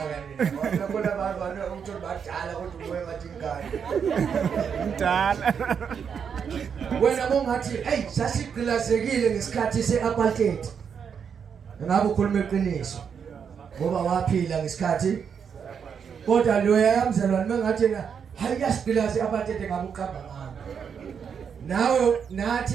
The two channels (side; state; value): left; quieter; 7.0 dB